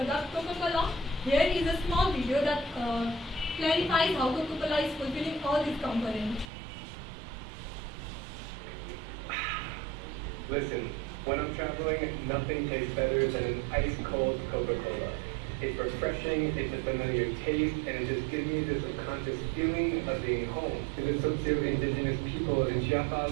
Coca-Cola, here is a small video that clarifies how Coca-Cola is fulfilling all these components. Listen, when I'm traveling, nothing tastes better than an ice-cold Coca-Cola. It's refreshing, it's a familiar taste, and it just gives me this subconscious feeling of being home. To the socio-indigenous people in Chiapas,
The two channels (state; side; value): drops out; left; at 6.5 s